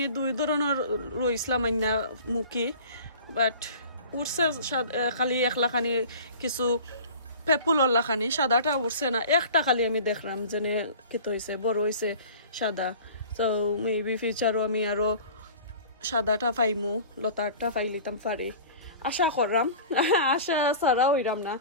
2 ধরনের রইসলাম আইনা মুখি, বাট উঠছে খালি 1 লাখানি কিছু পেপুলর লাখানি সাদাটা উঠছে না, একটা খালি আমি দেখলাম যেনে কেত হয়েছে বড় হয়েছে সাদা। তো মেবি ফিউচারও আমি আরো সাদাটা পাইমু লতারটা পাইলিতাম পারি আশা করলাম, আশা ছাড়া হইলাম না।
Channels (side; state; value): both; inverted; correlation -0.41